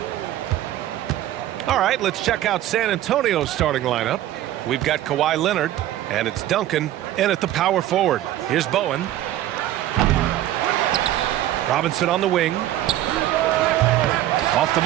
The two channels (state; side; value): quieter; left; 13.4 dB